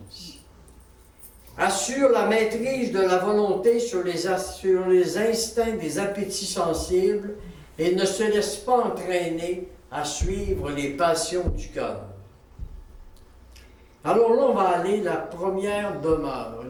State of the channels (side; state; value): both; identical; correlation 1.00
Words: Assure la maîtrise de la volonté sur les instincts des appétits sensibles et ne se laisse pas entraîner à suivre les passions du cœur. Alors là, on va aller la première demeure,